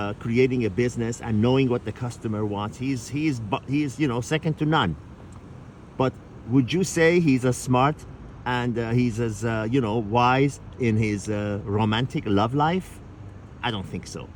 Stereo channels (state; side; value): identical; both; correlation 1.00